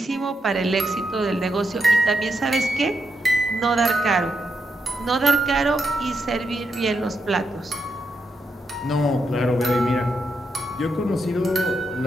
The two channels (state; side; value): normal; both; correlation 0.83